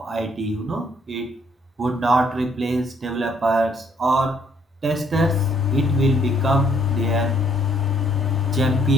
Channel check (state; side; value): normal; both; correlation 0.66